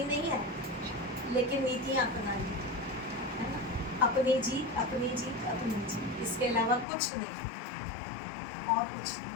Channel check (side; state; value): right; drops out; at 6.9 s